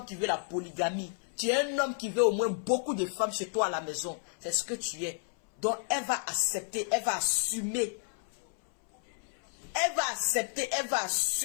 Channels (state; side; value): silent; right; 57 dB below the other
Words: qui veut la polygamie. Tu es un homme qui veut au moins beaucoup de femmes chez toi à la maison. C'est ce que tu es. Donc elle va accepter, elle va assumer. Elle va accepter, elle va